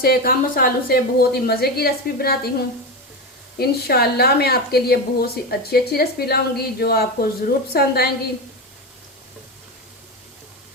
कम मसालों से बहुत ही मज़े की रेसिपी बनाती हूँ। इंशाल्लाह मैं आपके लिए बहुत सी अच्छी अच्छी रेसिपी लाऊंगी जो आपको ज़रूर पसंद आएंगी।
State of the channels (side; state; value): both; normal; correlation 0.18